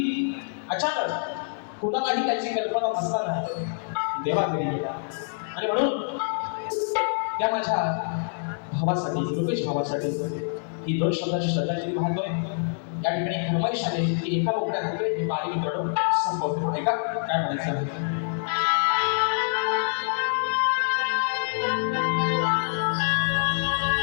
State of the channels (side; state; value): right; silent; 61 dB below the other